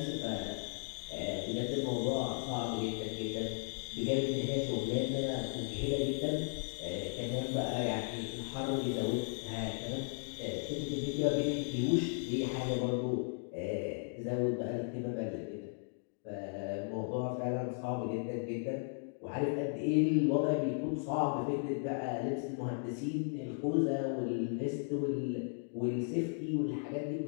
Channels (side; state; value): right; silent; digital silence